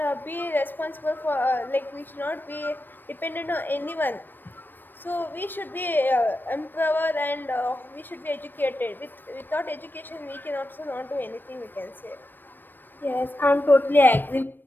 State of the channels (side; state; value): right; late; 0.093 ms